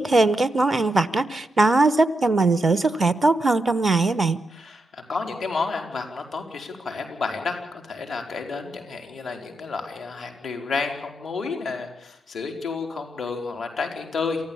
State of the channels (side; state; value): both; normal; correlation 0.85